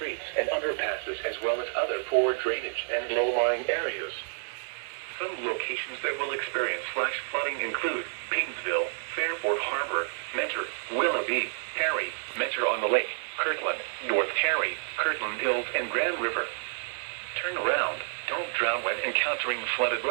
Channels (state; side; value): silent; left; digital silence